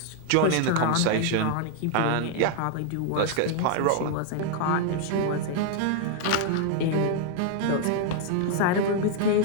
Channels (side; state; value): both; different; correlation 0.00